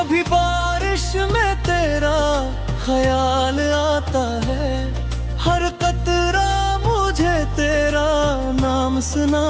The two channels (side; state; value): both; identical; correlation 1.00